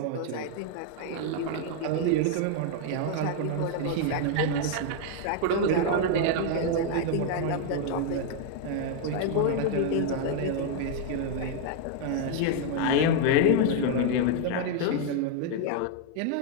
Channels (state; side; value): different; both; correlation 0.00